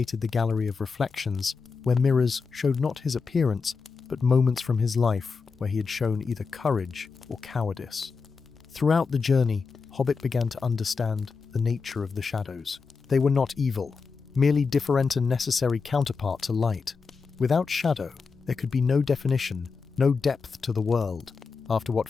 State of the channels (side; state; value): right; quieter; 5.0 dB